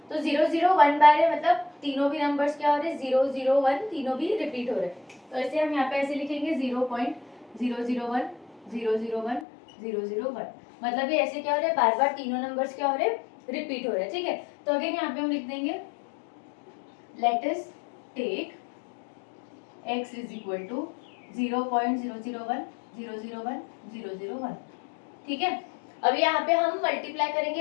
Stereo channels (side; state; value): right; drops out; at 9.5 s